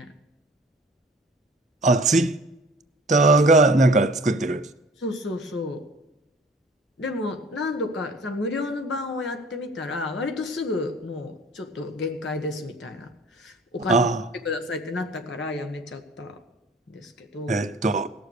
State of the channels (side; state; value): both; normal; correlation 0.49